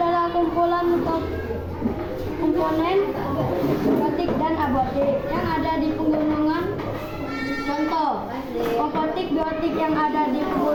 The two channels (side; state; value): both; identical; correlation 1.00